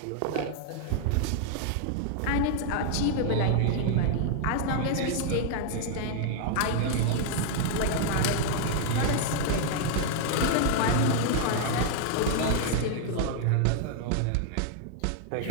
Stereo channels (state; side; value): different; both; correlation -0.01